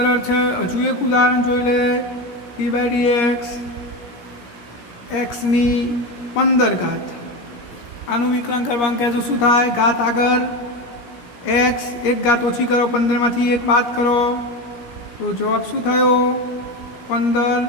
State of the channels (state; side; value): late; right; 17 ms